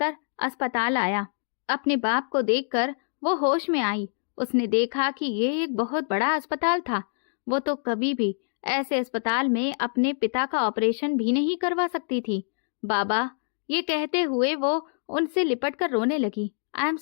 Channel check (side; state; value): right; silent; digital silence